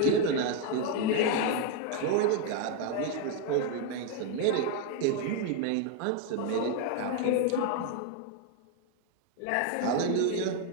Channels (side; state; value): both; different; correlation 0.01